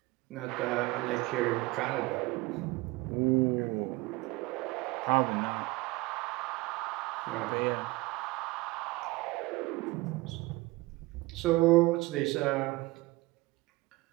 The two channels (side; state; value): left; quieter; 21.3 dB